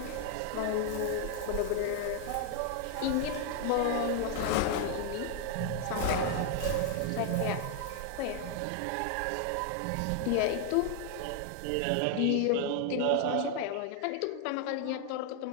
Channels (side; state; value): both; different; correlation 0.00